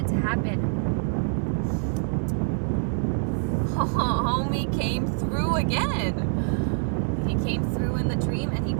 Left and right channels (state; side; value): silent; left; 59 dB below the other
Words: to happen, homie came through again. He came through in the dream and he